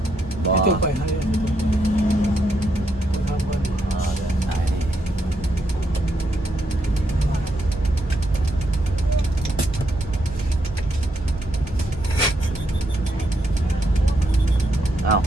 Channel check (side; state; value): both; normal; correlation 0.78